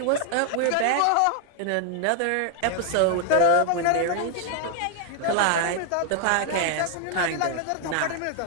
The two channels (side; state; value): both; different; correlation 0.00